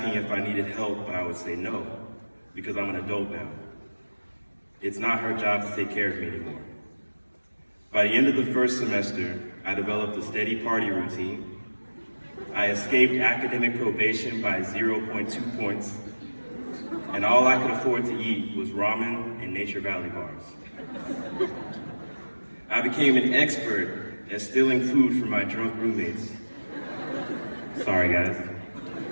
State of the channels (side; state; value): both; inverted; correlation -1.00